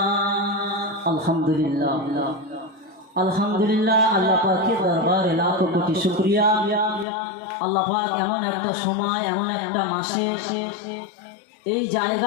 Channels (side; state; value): right; drops out; at 7.1 s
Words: আলহামদুলিল্লাহ আলহামদুলিল্লাহ। আল্লাহ পাকের দরবারে লাখো কোটি শুকরিয়া। আল্লাহ পাক এমন একটা সময়, এমন একটা মাসে এই